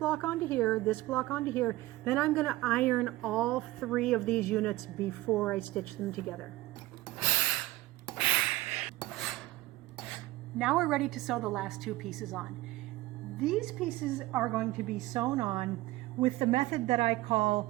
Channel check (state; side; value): quieter; left; 17.9 dB